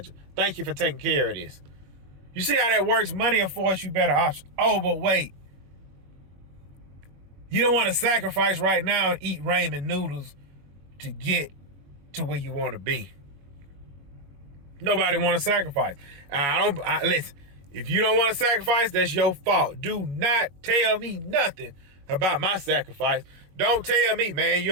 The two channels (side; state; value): left; late; 21 ms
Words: Thank you for taking care of this. You see how that works? Money affords you better options. Oh, but wait. You don't want to sacrifice right now and eat ramen noodles to get to where you want to be. Nobody want to sacrifice. Listen, if you don't want to sacrifice, that's your fault. Do not tell me nothing about my sacrifice. Don't tell me, man, you